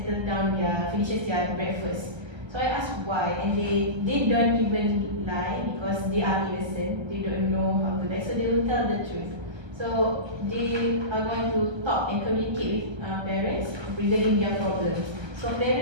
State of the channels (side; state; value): left; late; 1.3 ms